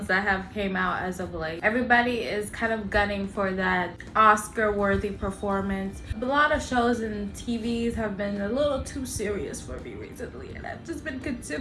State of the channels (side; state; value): both; identical; correlation 1.00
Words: that have came out as of late. Everybody is kind of gunning for that Oscar-worthy performance. A lot of shows and TVs have been a little too serious for me recently, and I've just been